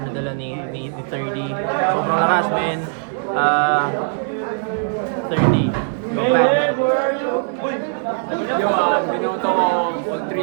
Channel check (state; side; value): silent; left; digital silence